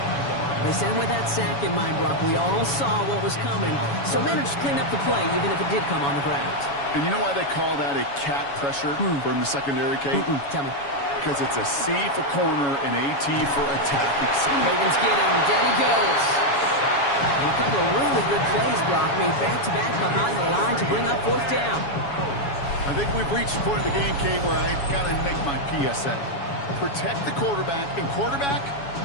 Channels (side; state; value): right; late; 7.1 ms